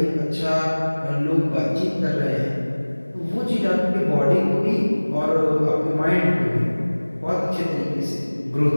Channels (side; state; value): both; inverted; correlation -1.00